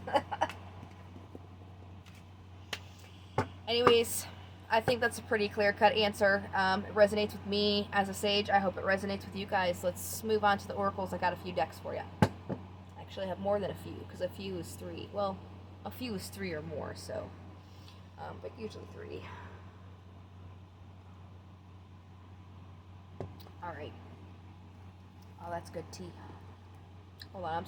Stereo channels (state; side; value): identical; both; correlation 1.00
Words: Anyways, I think that's a pretty clear-cut answer. It resonates with me as a sage. I hope it resonates with you guys. Let's move on to the oracles. I got a few decks for you. Actually, I have more than a few, because a few is 3. Well, a few is 3 or more, so. But usually 3. Alright. Oh, that's good tea. Hold on, I'm